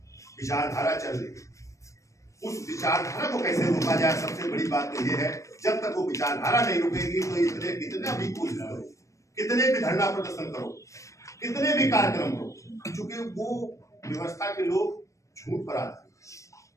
विचारधारा चल रही उस विचारधारा को कैसे रोका जाए। सबसे बड़ी बात तो ये है, जब तक वो विचारधारा नहीं रुकेगी तो इतने कितना भी कोशिश करो, कितने भी धरना प्रदर्शन करो, कितने भी कार्यक्रम करो, क्योंकि वो व्यवस्था के लोग झूठ पर आते हैं।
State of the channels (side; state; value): right; late; 0.15 ms